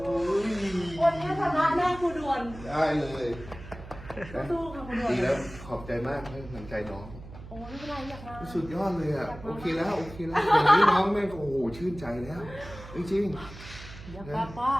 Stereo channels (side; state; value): right; noise; hum, 15 dB below the sound